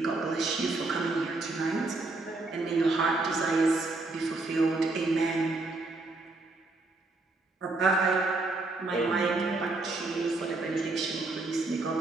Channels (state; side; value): quieter; left; 3.3 dB